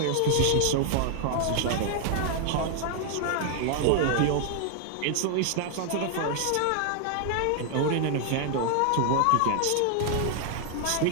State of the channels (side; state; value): both; different; correlation 0.00